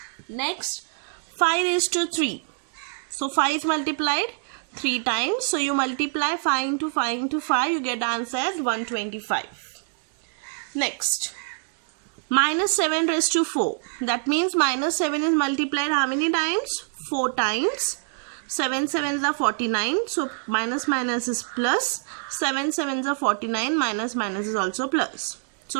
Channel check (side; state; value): left; silent; 56 dB below the other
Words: Next, 5 raised to 3. So, 5 is multiplied 3 times. So, you multiply 5 into 5 into 5, you get the answer as 125. Next, minus 7 raised to 4. That means minus 7 is multiplied how many times? 4 times. 7 7s are 49. So, minus minus is plus. 7 7s are 49. Minus minus is also plus.